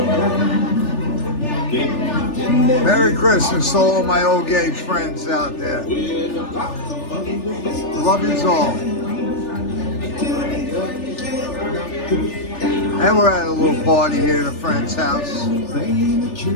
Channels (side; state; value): right; late; 3.4 ms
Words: Merry Christmas to all my old gauge friends out there. Love yous all. And we're at a little party here at a friend's house. Yeah,